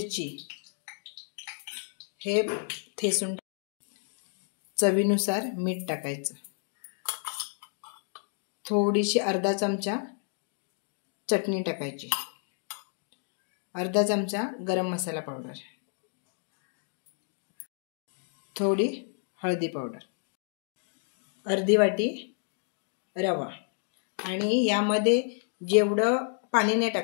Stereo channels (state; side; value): silent; right; 57 dB below the other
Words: हे ठेचून चवीनुसार मीठ टाकायचं. थोडीशी अर्धा चमचा चटणी टाकायची. अर्धा चमचा गरम मसाला पावडर, थोडी हळदी पावडर, अर्धी वाटी रवा आणि यामध्ये जेवढं पाणी नाही